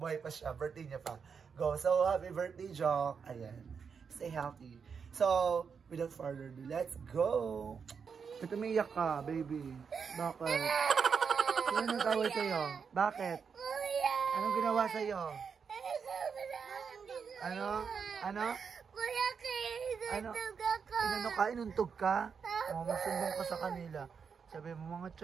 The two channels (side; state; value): left; quieter; 6.2 dB